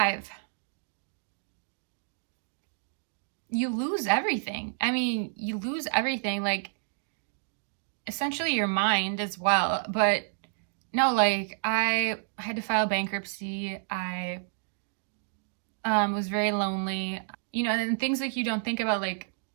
you lose everything. I mean, you lose everything, like essentially your mind as well. But no, like I had to file bankruptcy. I was very lonely, and things like you don't think about, like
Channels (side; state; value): left; silent; digital silence